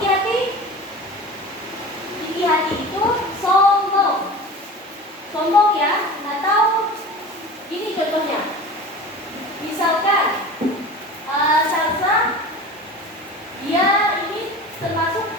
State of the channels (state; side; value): normal; both; correlation 0.36